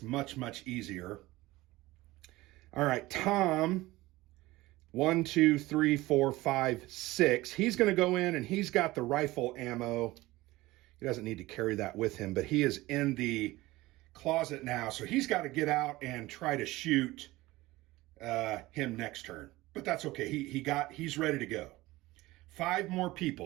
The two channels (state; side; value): quieter; left; 18.9 dB